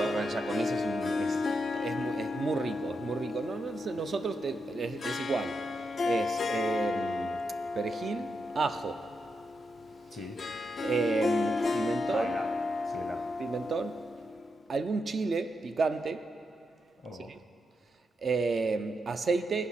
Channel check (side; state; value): both; normal; correlation 0.84